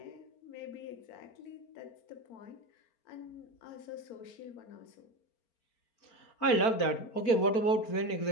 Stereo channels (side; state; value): right; late; 4.4 ms